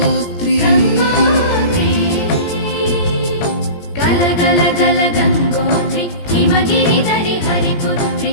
గల గల గల గంగోత్రి హిమగిరిధరి హరిపుత్రి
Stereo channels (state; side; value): late; right; 17 ms